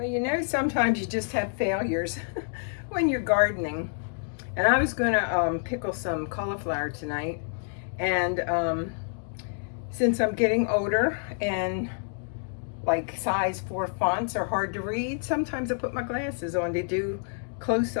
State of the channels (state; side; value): silent; right; 59 dB below the other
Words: you know, sometimes you just have failures when you're gardening. And I was going to pickle some cauliflower tonight, and since I'm getting older and like size 4 fonts are hard to read, sometimes I put my glasses on to do